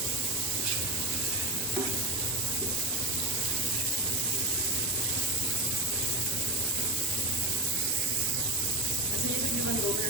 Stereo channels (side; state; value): both; normal; correlation 0.22